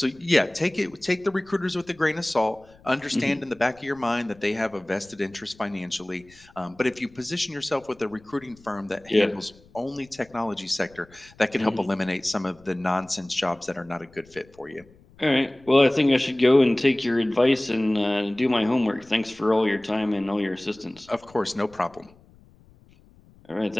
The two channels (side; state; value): left; noise; rumble, 27 dB below the sound